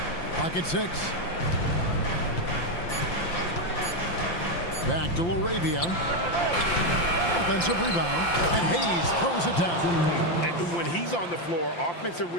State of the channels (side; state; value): right; late; 5.8 ms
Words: Pocket 6. Back to LaRavia. Offensive rebound, and Hayes throws it down. And when he's on the floor, offensive